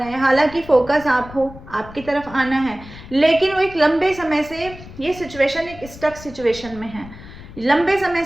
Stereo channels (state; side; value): noise; left; rumble, 17 dB below the sound